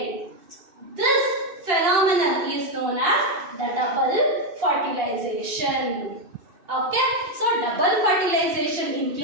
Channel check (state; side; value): late; left; 2.8 ms